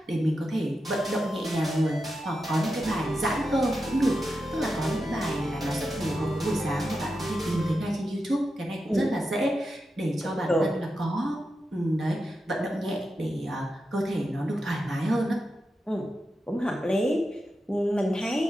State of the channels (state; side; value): normal; both; correlation 0.89